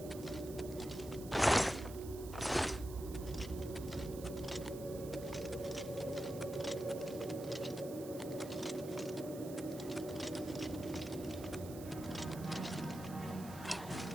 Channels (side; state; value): right; noise; hiss, 15 dB below the sound